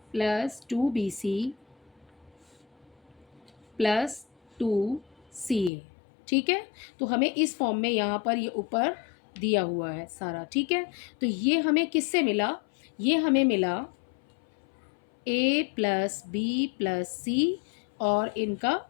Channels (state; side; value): drops out; right; at 5.7 s